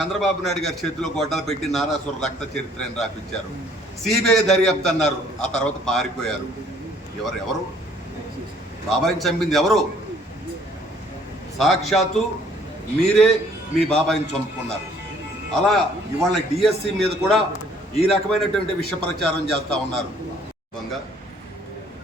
నాయుడు గారి చేతిలో గొడ్డలు పెట్టి నారాసుర రక్త చరిత్రని రాపించారు. సిబిఐ దర్యాప్తు అన్నారు, ఆ తర్వాత పారిపోయారు. ఎవరు బాబాయిని చంపింది ఎవరు? సాక్షాత్తు మీరే మీ బాబాయిని చంపుకున్నారు. అలా ఇవాళ డిఎస్సి మీద కూడా ఈ రకమైనటువంటి విష ప్రచారం చేస్తూ ఉన్నారు.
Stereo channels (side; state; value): both; normal; correlation 0.60